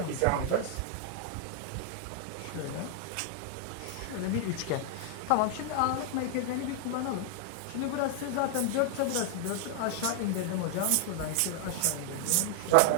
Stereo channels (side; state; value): both; different; correlation 0.00